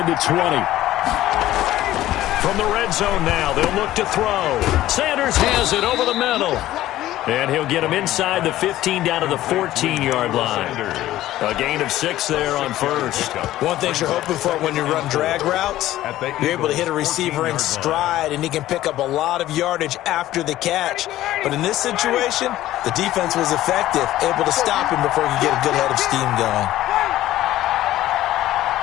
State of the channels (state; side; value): quieter; right; 14.6 dB